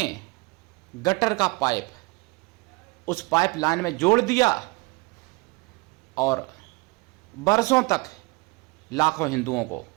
गटर का पाइप उस पाइपलाइन में जोड़ दिया और बरसों तक लाखों हिंदुओं को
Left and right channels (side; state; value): left; quieter; 26.7 dB